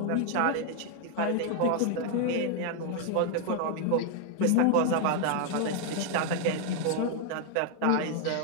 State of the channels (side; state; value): both; different; correlation 0.00